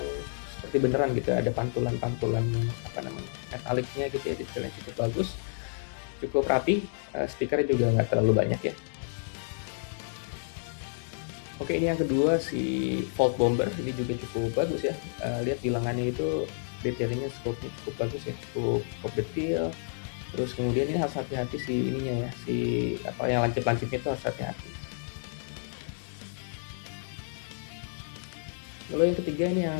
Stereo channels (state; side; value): silent; right; digital silence